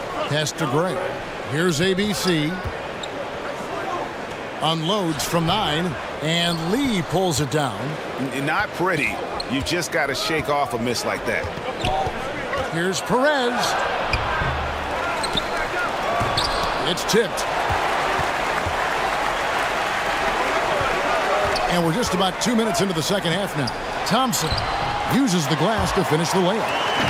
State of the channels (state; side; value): identical; both; correlation 1.00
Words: Pass to Gray. Here's ABC. Unloads from 9. And Lee pulls it down. Not pretty. You just got to shake off a miss like that. Here's Perez. It's tipped. And we're just about 2 minutes into the second half now. Thompson uses the glass to finish the